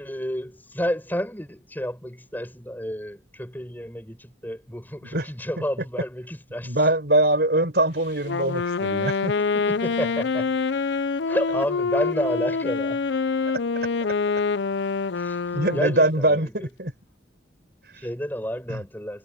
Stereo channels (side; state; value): both; normal; correlation 0.07